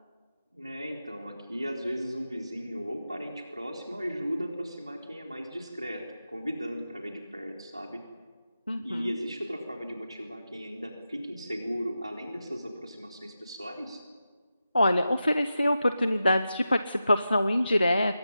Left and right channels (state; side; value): inverted; both; correlation -0.90